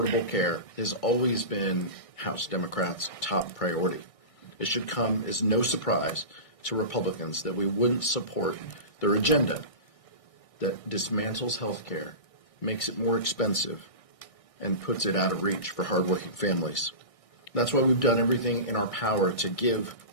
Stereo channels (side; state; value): right; late; 1.6 ms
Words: care has always been House Democrats' top priority. It should come as no surprise to Republicans that we wouldn't support their agenda that dismantles health care, makes it more expensive, and puts it out of reach for hardworking families. That's why we've done everything in our power to give